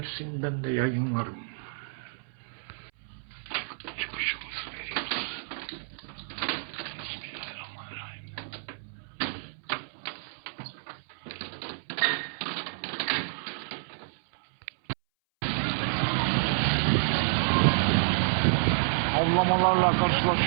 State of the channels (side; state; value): left; silent; 58 dB below the other